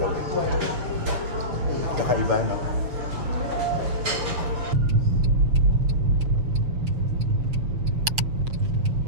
way. Kakaiba, no?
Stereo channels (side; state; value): left; late; 6.8 ms